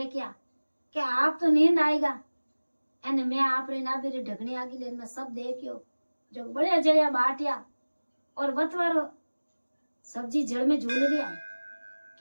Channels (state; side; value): inverted; both; correlation -1.00